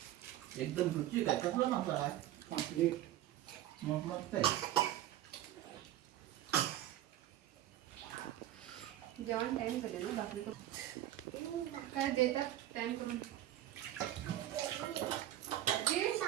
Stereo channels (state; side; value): quieter; left; 13.1 dB